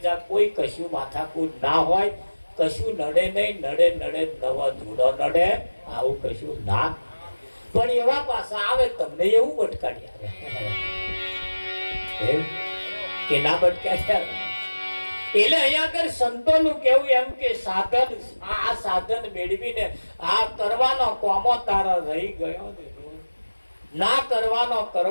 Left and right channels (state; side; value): inverted; both; correlation -1.00